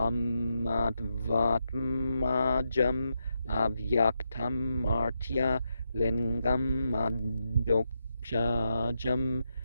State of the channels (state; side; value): inverted; both; correlation -0.84